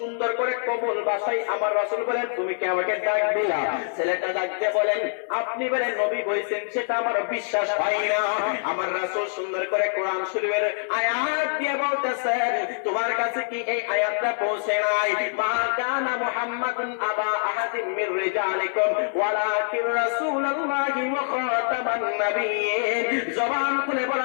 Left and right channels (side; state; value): right; silent; digital silence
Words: করে কোমল ভাষায় আমার রাসূল বলেন তুমি কি আমাকে ডাক দিলা? ছেলেটা ডাক দিয়ে বলেন আপনি বলেন নবী হইছেন সেটা আমার বিশ্বাস হয় না। আমার রাসূল সুন্দর করে কোরআন শরীফের আয়াত দিয়ে বলতেছেন তোমার কাছে কি এই আয়াতটা পৌঁছে নাই? মা কানা মুহাম্মাদুন আবা আহাদিন মির রিজালিকুম ওয়ালাকিন রাসূলুল্লাহি ওয়া খাতামান নাবিয়্যিন। জবান খুলে